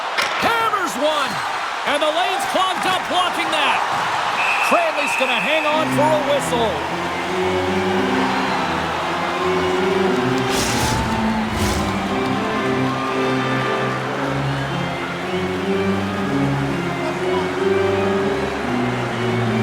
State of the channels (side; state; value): both; identical; correlation 1.00